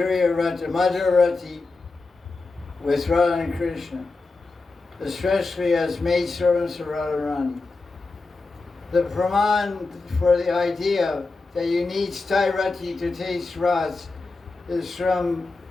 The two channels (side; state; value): right; quieter; 3.7 dB